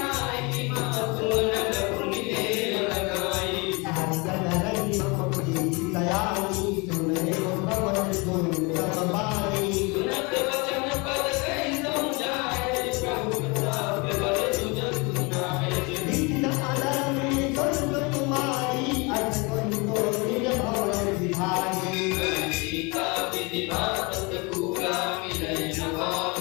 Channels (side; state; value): right; quieter; 28.5 dB